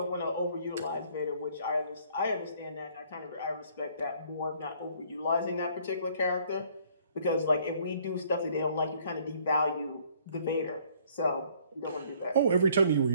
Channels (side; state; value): both; inverted; correlation -0.60